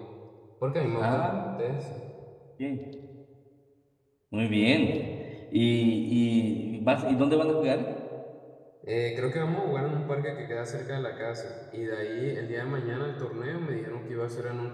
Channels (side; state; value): both; identical; correlation 1.00